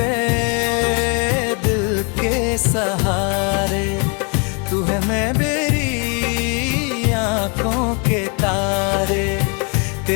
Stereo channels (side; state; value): right; quieter; 34.8 dB